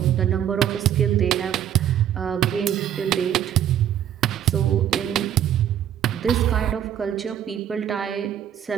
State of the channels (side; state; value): left; quieter; 10.2 dB